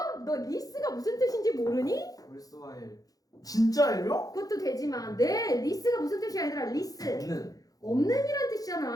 너 리스가 무슨 뜻인지 모르니? worthwhile. 진짜예요? 그것도 되지만 네 리스가 무슨 뜻이야 얘들아 리스 없는. 없는이란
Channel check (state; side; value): late; right; 0.18 ms